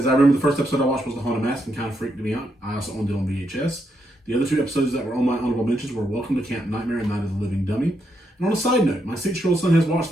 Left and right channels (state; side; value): normal; both; correlation 0.80